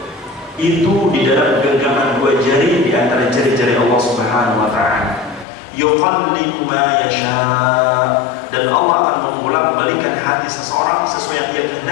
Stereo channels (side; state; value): right; drops out; at 5.5 s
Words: itu di dalam genggaman dua jari di antara jari-jari Allah Subhanahu wa taala. Yuqallibu ma yasha, dan Allah akan membolak-balikan hati seseorang sesuai yang dia